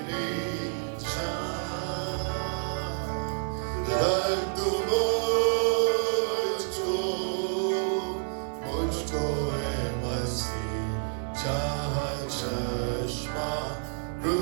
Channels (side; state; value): left; silent; 59 dB below the other